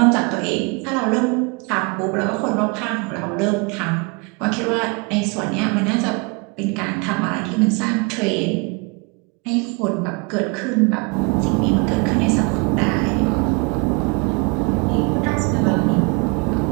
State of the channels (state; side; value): quieter; left; 30.5 dB